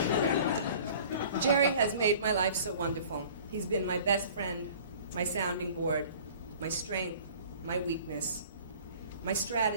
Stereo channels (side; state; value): both; inverted; correlation -0.47